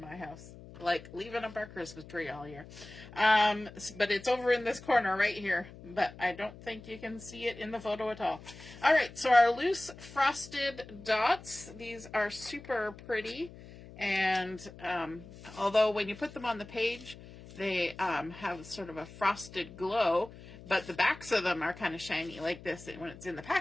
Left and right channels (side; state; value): left; noise; hum, 17 dB below the sound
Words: house, like leaving up our Christmas tree all year. But it's over in this corner right here. But I don't think you can see it in the photo at all. All right, so our loose frosted dots, these are super pretty. And although when you put them on the page, they have sort of a frosted glow, but the backs of them are kind of shiny like this when it's in the